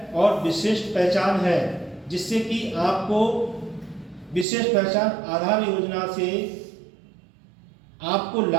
और विशिष्ट पहचान है, जिससे कि आपको विशिष्ट पहचान आधार योजना से आपको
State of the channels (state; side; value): drops out; left; at 4.5 s